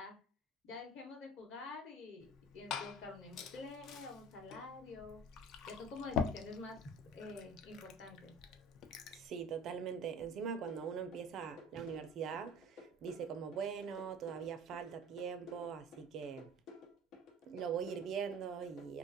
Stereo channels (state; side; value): normal; both; correlation 0.42